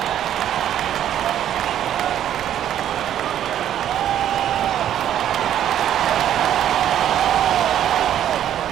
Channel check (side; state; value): left; quieter; 10.8 dB